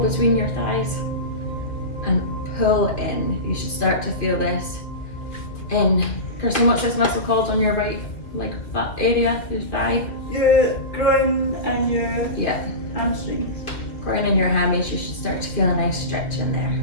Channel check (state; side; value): late; right; 2.2 ms